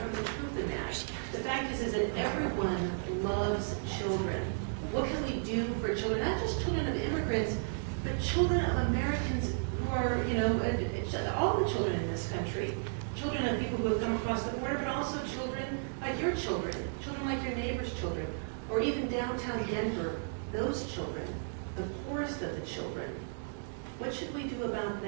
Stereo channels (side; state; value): left; silent; digital silence